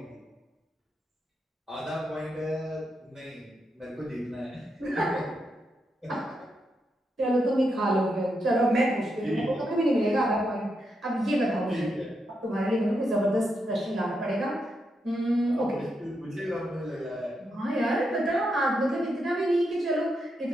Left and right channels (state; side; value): normal; both; correlation 0.83